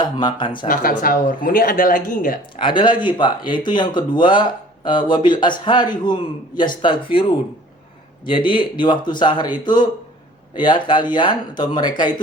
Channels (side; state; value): both; normal; correlation 0.50